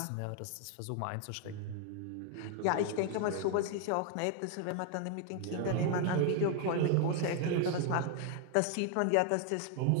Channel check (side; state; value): both; different; correlation 0.00